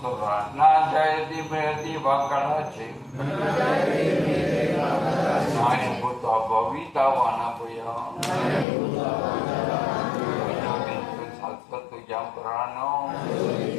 சொல்றான், நான் ஜெயதி மேதி வாக்கடாச்சி நாயம் பூத்தா பவிதாவான புயம் சத்வத்து ஜம் புராணோ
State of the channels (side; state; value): right; drops out; at 8.7 s